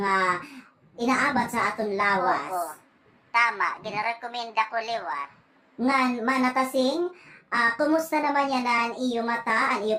inaabat sa aton lawas. Oo, tama, ginarekomenda ko liwat. Ngan manatasing, kumusta naman yan ang iyo mata, ang iyo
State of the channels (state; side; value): identical; both; correlation 1.00